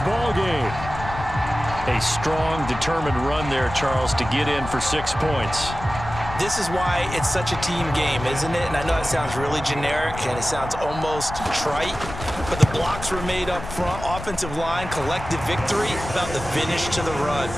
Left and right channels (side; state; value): left; noise; rumble, 10 dB below the sound